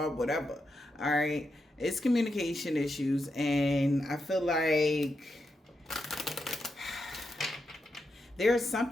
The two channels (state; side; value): normal; both; correlation 0.85